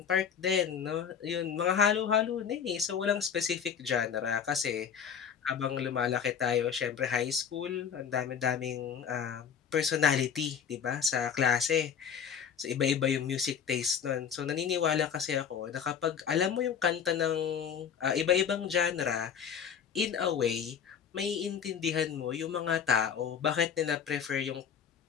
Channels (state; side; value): quieter; right; 7.5 dB